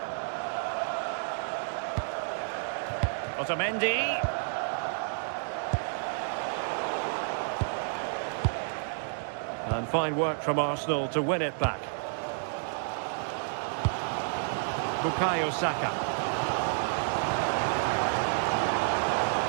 Otamendi. And fine work from Arsenal to win it back. Bukayo Saka.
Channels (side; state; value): left; silent; digital silence